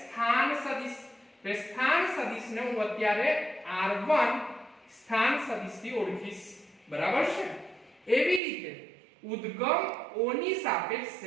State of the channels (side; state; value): left; drops out; at 8.4 s